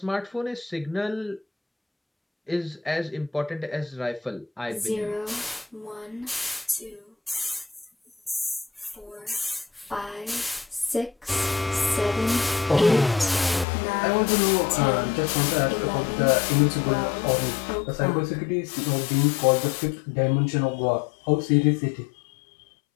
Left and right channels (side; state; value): right; drops out; at 13.7 s